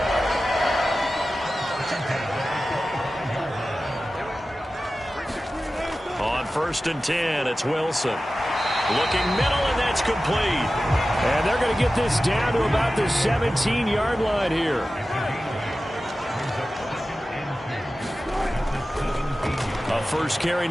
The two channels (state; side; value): normal; both; correlation 0.95